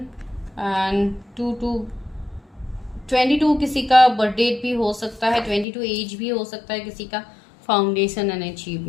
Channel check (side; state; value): right; drops out; at 5.7 s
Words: एंड 22 किसी का बर्थ डेट भी हो सकता है, 22 एज भी हो सकता है किसी का। फाउंडेशन एंड